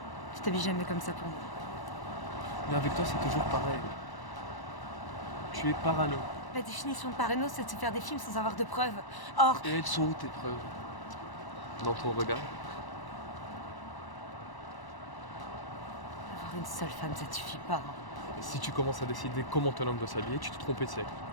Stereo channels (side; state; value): right; late; 1.0 ms